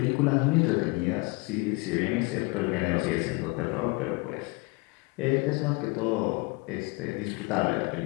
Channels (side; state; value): right; quieter; 27.1 dB